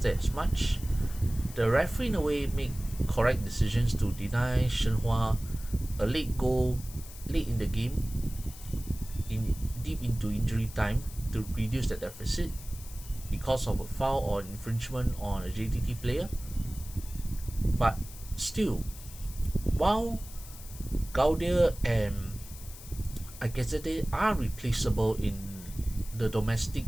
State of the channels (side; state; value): left; noise; hiss, 16 dB below the sound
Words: as much. The referee in a way made correct decisions to deny Shenhua a late goal late in the game, deep into injury time, to reduce the deficit because of a foul or infringement on a JDT player. But still, while Gaudia and Akazete are replaceable in the domestic